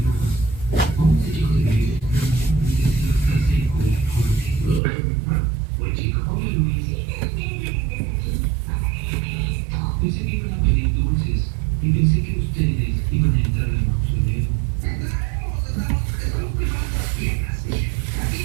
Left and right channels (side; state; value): left; drops out; at 4.8 s